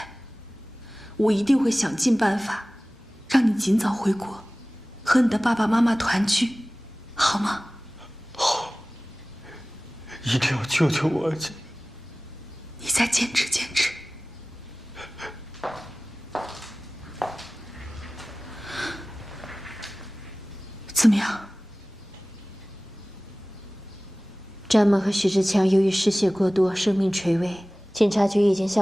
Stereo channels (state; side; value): normal; both; correlation 0.98